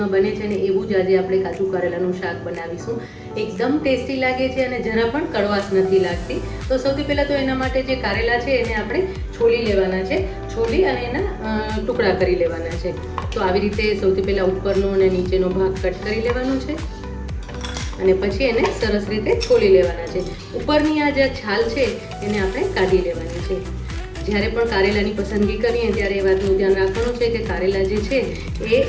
બને છે ને એવું જ આજે આપણે કાજુ કારેલાનું શાક બનાવીશું. એકદમ ટેસ્ટી લાગે છે અને જરા પણ કડવાશ નથી લાગતી. તો સૌથી પહેલાં તો એના માટે જે કારેલા છે એને આપણે છોલી લેવાના છે. છોલી અને એના ટુકડા કરી લેવાના છે. તો આવી રીતે સૌથી પહેલાં ઉપરનો અને નીચેનો ભાગ કટ કરી લેવાનો છે અને પછી એને સરસ રીતે છોલી લેવાના છે. ઉપરની આ જે છાલ છે એને આપણે કાઢી લેવાની છે. જ્યારે પણ કારેલાની પસંદગી કરીએ ત્યારે એ વાતનું ધ્યાન રાખવાનું છે કે કારેલા જે છે એ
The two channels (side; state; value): both; identical; correlation 1.00